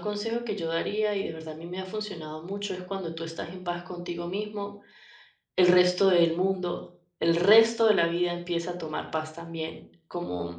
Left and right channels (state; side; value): identical; both; correlation 1.00